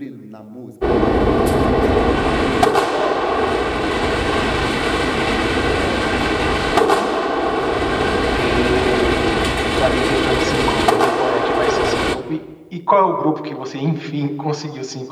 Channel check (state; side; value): identical; both; correlation 1.00